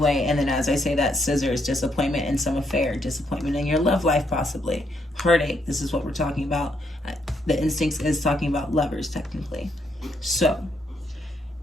And then as I say that, scissors, disappointment in some affair, disappointment in your love life possibly, heartache, this is what we're talking about. The instincts is talking about lovers technically. So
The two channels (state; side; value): normal; both; correlation 0.75